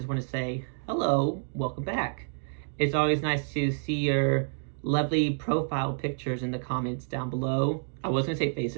want to say hello, welcome back. It's always nice to see your lovely profile pictures in the comments down below. I was gonna say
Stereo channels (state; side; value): silent; left; digital silence